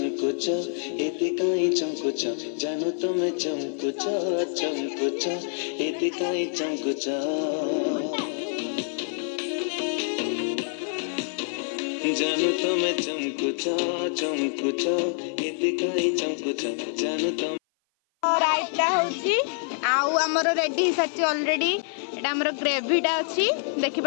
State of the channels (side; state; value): right; silent; 56 dB below the other